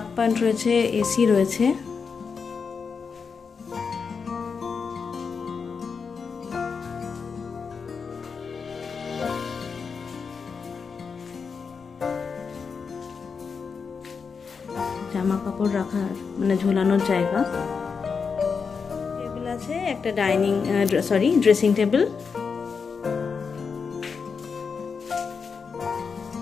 পয়েন্ট রয়েছে, এসি রয়েছে। জামা কাপড় রাখার মানে ঝোলানোর জায়গা। টেবিল আছে, একটা ড্রেসিং টেবিল।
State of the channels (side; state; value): right; quieter; 5.6 dB